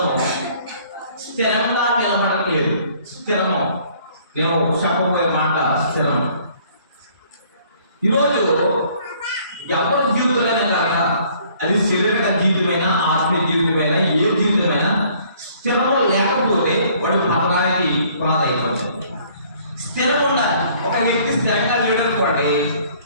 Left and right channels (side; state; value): both; inverted; correlation -0.59